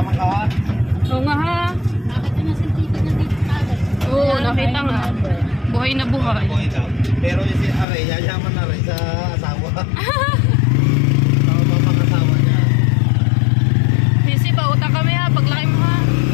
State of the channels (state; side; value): drops out; right; at 7.9 s